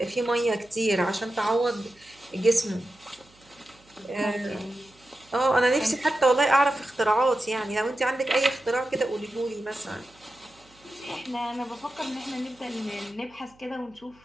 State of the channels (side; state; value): right; noise; hum, 29 dB below the sound